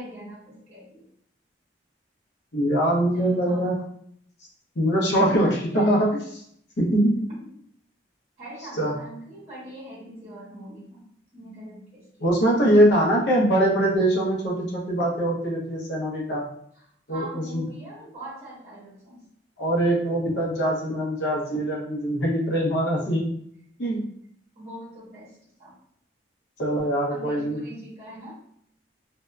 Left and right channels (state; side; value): normal; both; correlation 0.52